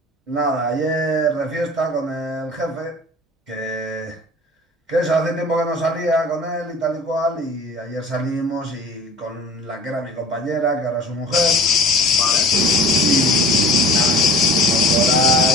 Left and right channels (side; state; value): both; normal; correlation 0.42